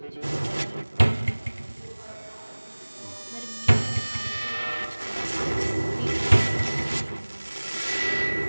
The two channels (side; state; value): both; inverted; correlation -1.00